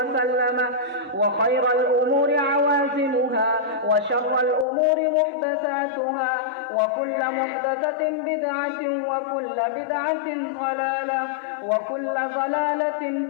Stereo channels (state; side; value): drops out; right; at 4.7 s